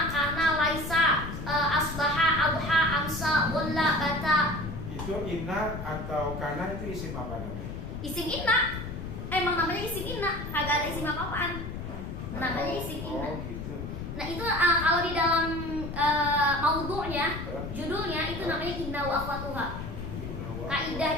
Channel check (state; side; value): noise; left; rumble, 7 dB below the sound